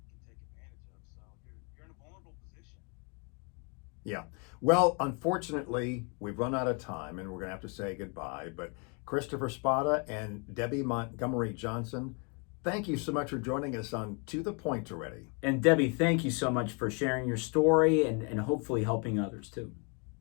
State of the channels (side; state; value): right; quieter; 34.4 dB